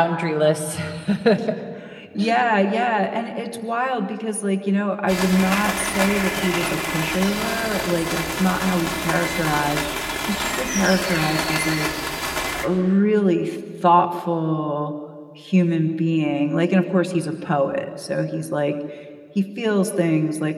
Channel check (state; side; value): identical; both; correlation 1.00